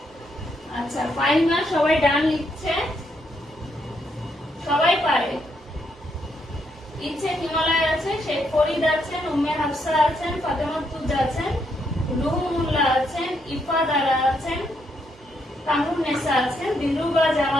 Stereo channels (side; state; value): both; normal; correlation 0.76